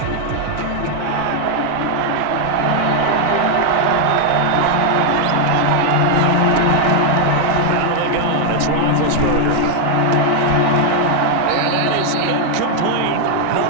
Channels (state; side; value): different; both; correlation 0.00